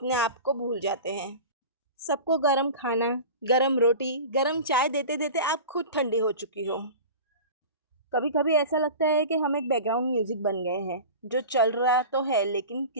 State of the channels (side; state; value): both; inverted; correlation -0.34